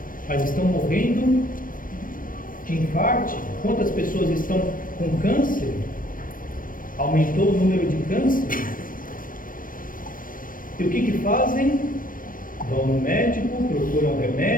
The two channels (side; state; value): right; late; 0.40 ms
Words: mas estão morrendo de infarto. Quantas pessoas estão com câncer? Aumentou o número de câncer. E o que fazem? Vão no médico, procuram